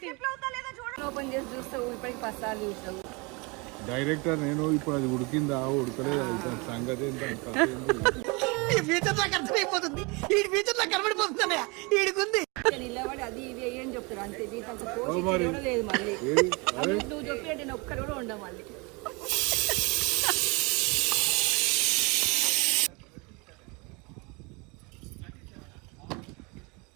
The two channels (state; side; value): quieter; left; 28.5 dB